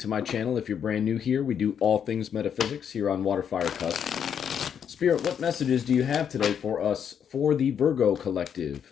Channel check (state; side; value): quieter; right; 8.1 dB